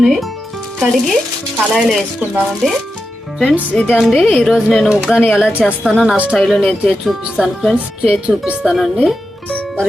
కడిగి కళాయిలో వేసుకుందామండి. ఫ్రెండ్స్ ఇదండి ఈరోజు నేను ఉగ్గాని ఎలా చేస్తానో నా స్టైల్లో నేను చేసి చూపిస్తాను ఫ్రెండ్స్, చేసి చూపిస్తానండి. మరి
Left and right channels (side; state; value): both; normal; correlation 0.89